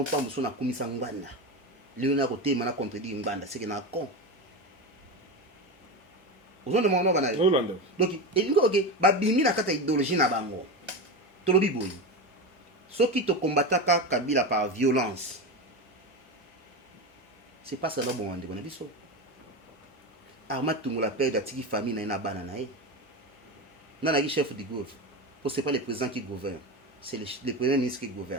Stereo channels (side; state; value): both; normal; correlation 0.20